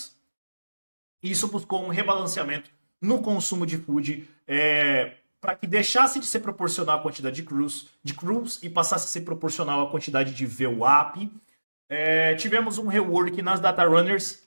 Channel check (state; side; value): inverted; both; correlation -1.00